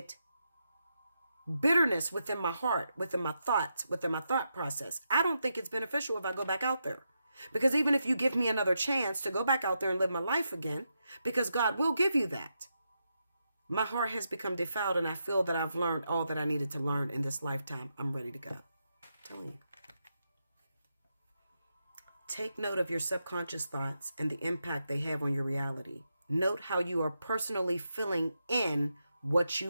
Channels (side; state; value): both; inverted; correlation -0.85